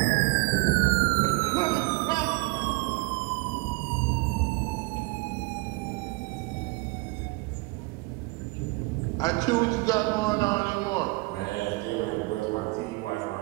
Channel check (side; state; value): left; quieter; 25.2 dB